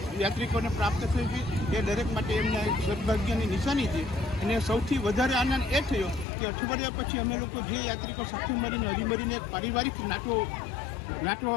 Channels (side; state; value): right; drops out; at 6.2 s